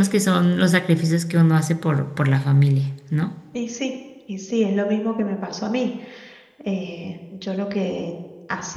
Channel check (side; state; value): both; identical; correlation 1.00